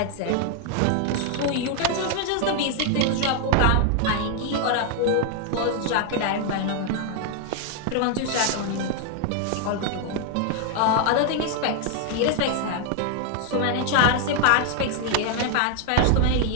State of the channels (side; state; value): both; different; correlation 0.00